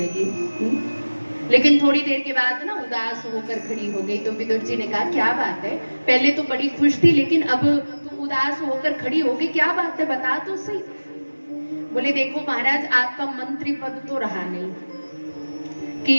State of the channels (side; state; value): both; inverted; correlation -1.00